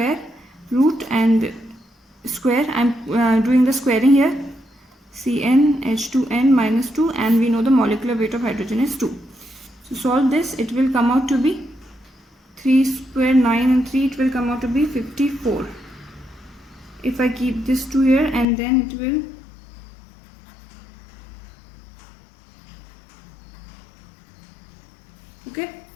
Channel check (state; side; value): drops out; right; at 18.4 s